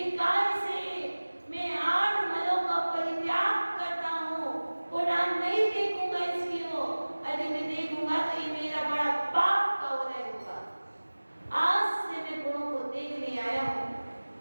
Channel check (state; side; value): inverted; both; correlation -1.00